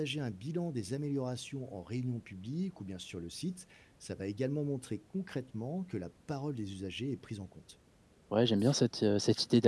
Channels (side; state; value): both; identical; correlation 1.00